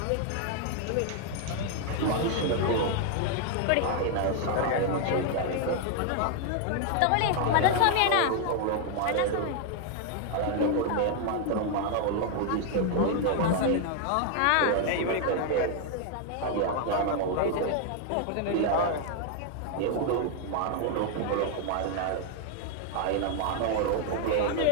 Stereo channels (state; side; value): different; both; correlation 0.00